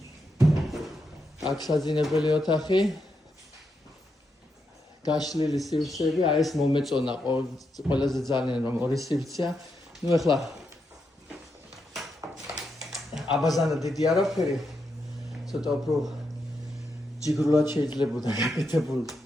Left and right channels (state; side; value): normal; both; correlation 0.83